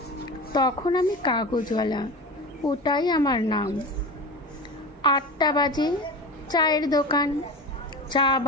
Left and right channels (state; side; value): normal; both; correlation 0.30